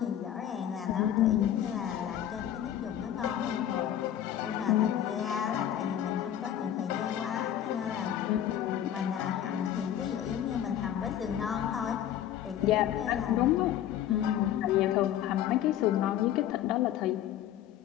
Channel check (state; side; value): quieter; right; 10.9 dB